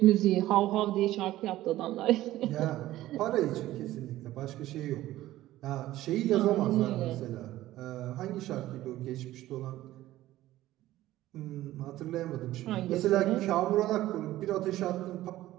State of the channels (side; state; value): left; quieter; 15.3 dB